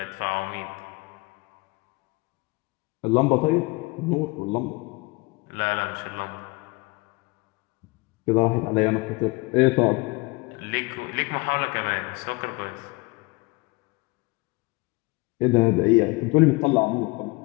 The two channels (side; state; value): right; quieter; 25.2 dB